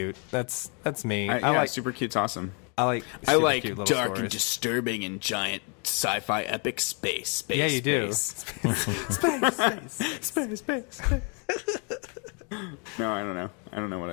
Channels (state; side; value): quieter; right; 36.9 dB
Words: That's me. I like super cute's awesome. I like I super like cute little dark stories. and disturbing and giant sci-fi epic space. Yeah, you do. Space. No, I don't know. I don't know what